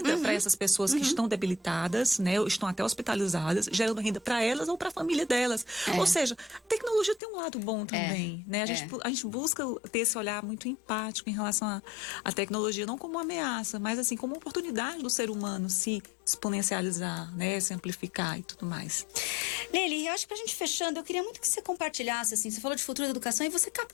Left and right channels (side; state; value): right; drops out; at 7.2 s